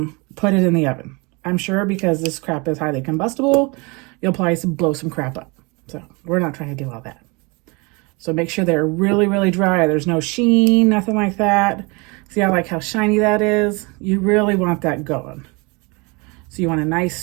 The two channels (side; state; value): left; quieter; 28.3 dB